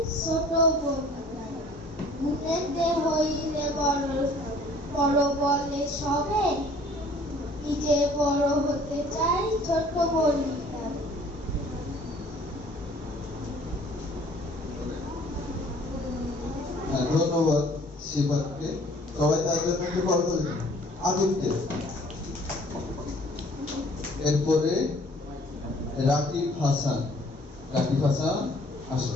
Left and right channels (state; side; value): normal; both; correlation 0.54